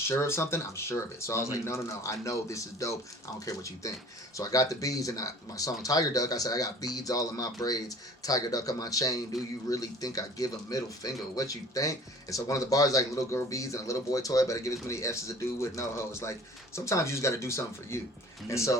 of something, I'm sure of it. So I was like, no. I know this is dope. I don't care what you think. So I got the beads, and my song Tiger Duck, I said, I got beads all in my braids, Tiger Duck on my chain. Do you really think I give a middle finger? What you think? And so one of the bars like little girl beads and a little boy toy, but I give as many F's as a dude with no hoes. Like sometimes you just got to do something for you. And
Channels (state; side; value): normal; both; correlation 0.47